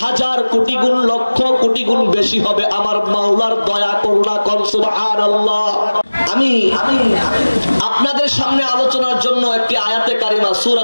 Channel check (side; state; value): both; inverted; correlation -1.00